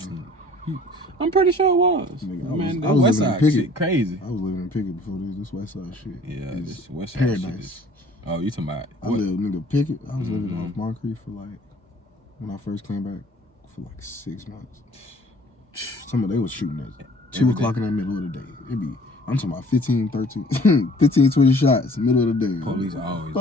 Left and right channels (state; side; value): normal; both; correlation 0.53